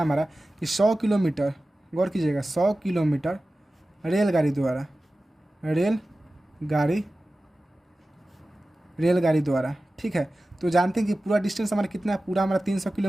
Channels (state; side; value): normal; both; correlation 0.95